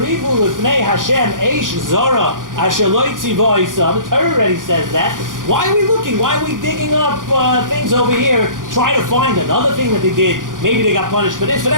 lefnei Hashem eish zara asher lo yitziva isa." The Torah already says that. Why are we looking? Why are we digging up things over here, trying to find another thing that they did? Maybe they got punished for this, for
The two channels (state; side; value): late; left; 0.89 ms